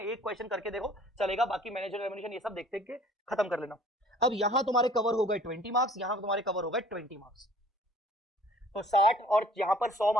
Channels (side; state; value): both; normal; correlation 0.53